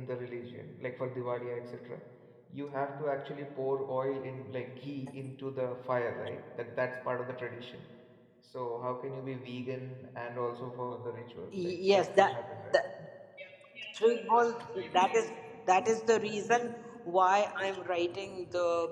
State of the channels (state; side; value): identical; both; correlation 1.00